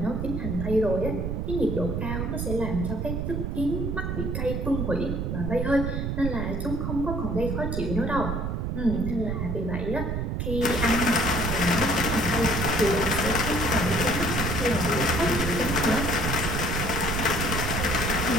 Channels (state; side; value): noise; right; rumble, 2 dB below the sound